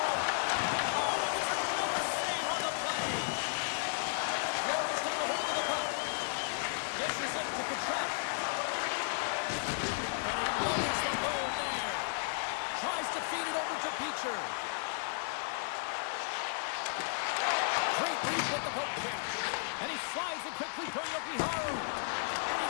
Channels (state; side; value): silent; right; 55 dB below the other